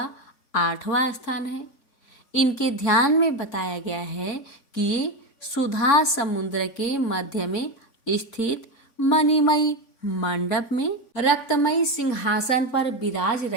8वां स्थान है। इनके ध्यान में बताया गया है कि ये सुधा समुद्र के मध्य में स्थित मणिमयी मंडप में रक्तमयी सिंहासन पर विराज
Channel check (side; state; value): right; late; 3.5 ms